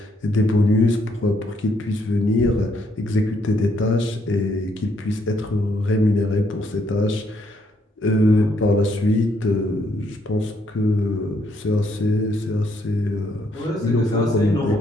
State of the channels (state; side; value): normal; both; correlation 0.72